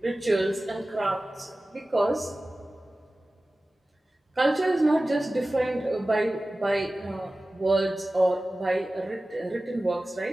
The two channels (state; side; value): normal; both; correlation 0.96